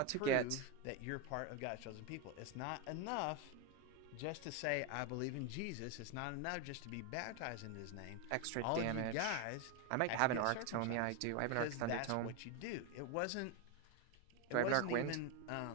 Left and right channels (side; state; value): both; different; correlation 0.02